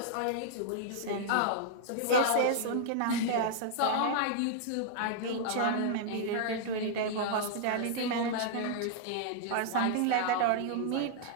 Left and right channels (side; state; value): both; different; correlation -0.01